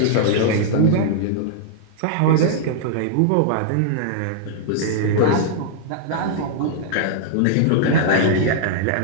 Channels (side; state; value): both; different; correlation -0.01